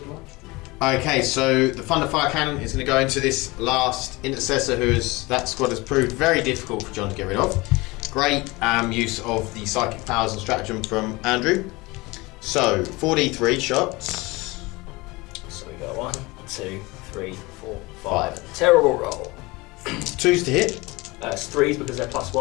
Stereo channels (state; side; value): quieter; right; 23.0 dB